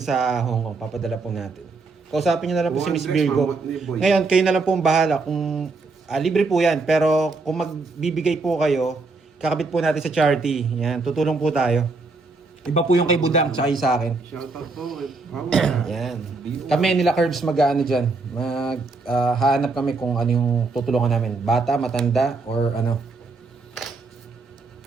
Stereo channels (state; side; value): quieter; left; 3.8 dB